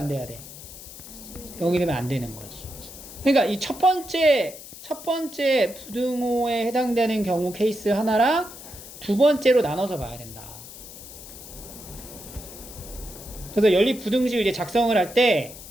돼야 돼? 0이 되면 안 되는 거지. 그러니까 이 첫 번째 부등호에 해당되는 경우 케이스 하나랑 두 번째로 나눠서 봐야 된다. 그래서 연립부등식을 이제 작성을 할 때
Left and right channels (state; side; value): noise; left; hiss, 15 dB below the sound